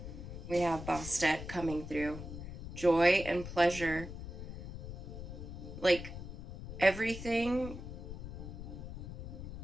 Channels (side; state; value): left; noise; rumble, 9 dB below the sound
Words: We have Bastet coming through. Joy and pleasure. Like, everything